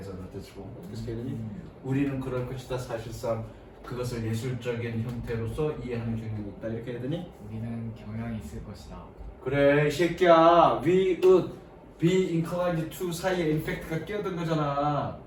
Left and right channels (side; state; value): both; identical; correlation 1.00